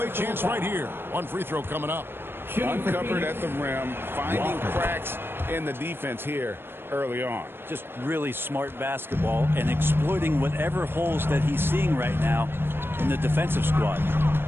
chance right here. One free throw coming up. Uncovered at the rim, finding cracks in the defense here early on. Just really smart basketball and exploiting whatever holes that he's seeing right now in the defensive squad.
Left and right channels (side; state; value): left; late; 0.10 ms